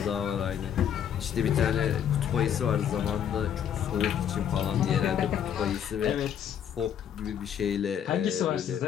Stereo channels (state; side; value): quieter; right; 9.0 dB